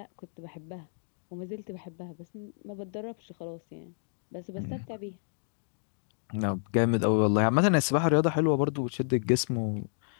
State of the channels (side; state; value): right; silent; digital silence